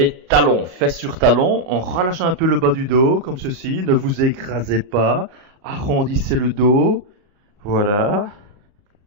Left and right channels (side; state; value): left; late; 38 ms